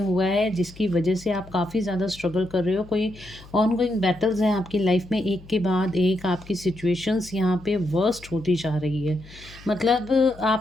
है जिसकी वजह से आप काफ़ी ज़्यादा स्ट्रगल कर रहे हो। कोई ऑनगोइंग बैटल्स हैं आपकी लाइफ में, एक के बाद एक आपकी सिचुएशंस यहाँ पे वर्स्ट होती जा रही है। मतलब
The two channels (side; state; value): left; noise; hum, 20 dB below the sound